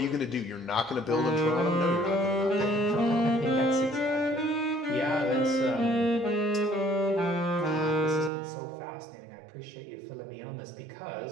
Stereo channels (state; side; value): drops out; left; at 8.3 s